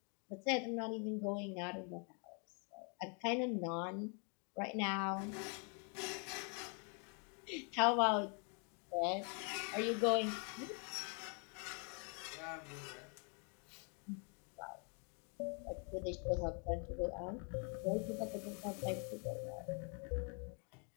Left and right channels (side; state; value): right; quieter; 39.2 dB